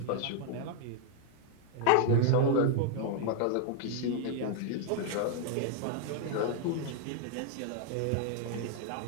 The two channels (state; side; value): different; both; correlation 0.00